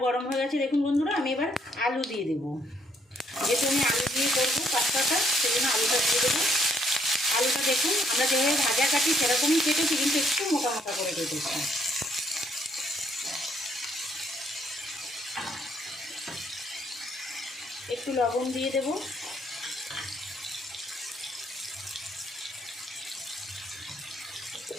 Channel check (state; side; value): normal; both; correlation 0.69